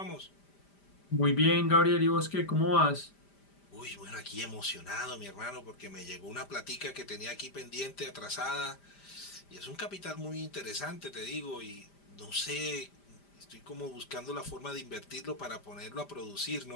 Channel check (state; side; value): late; right; 5.0 ms